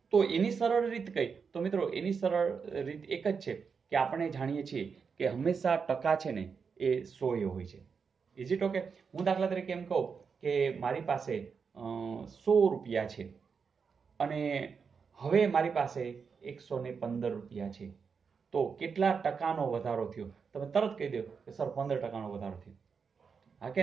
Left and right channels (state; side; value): quieter; left; 5.8 dB